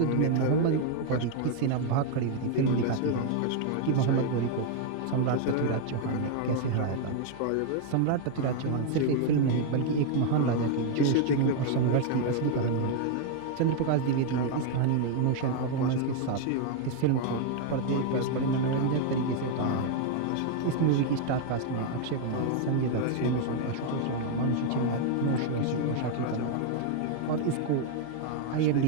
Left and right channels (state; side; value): different; both; correlation 0.00